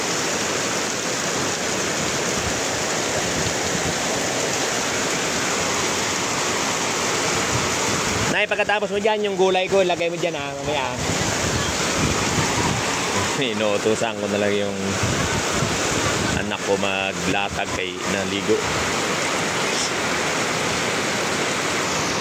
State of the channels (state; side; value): identical; both; correlation 1.00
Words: Nay, pagkatapos mo dyan, yung gulay ko, lagay mo dyan mamaya. Inuutusan ko na lang yung anak ko maglatag kay naligo.